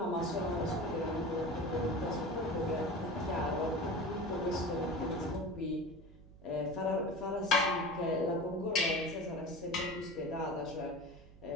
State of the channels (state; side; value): noise; right; hum, 20 dB below the sound